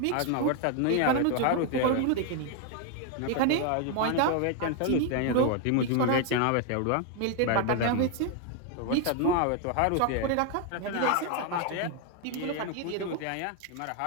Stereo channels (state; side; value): different; both; correlation 0.01